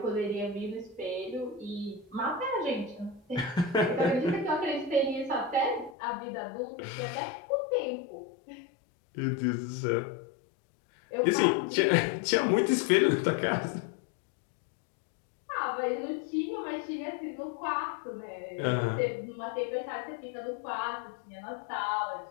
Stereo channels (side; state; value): right; drops out; at 6.0 s